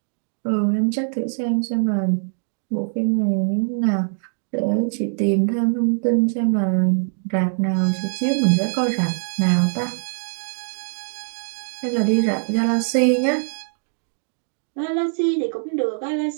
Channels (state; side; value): silent; left; digital silence